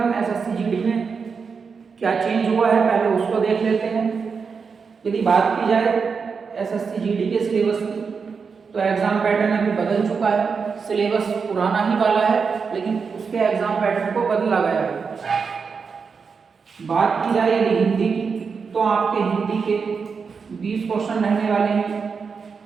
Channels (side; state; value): left; quieter; 5.5 dB